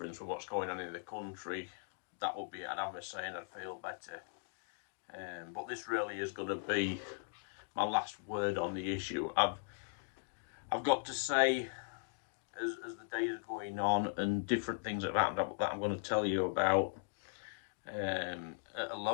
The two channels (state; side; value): silent; right; digital silence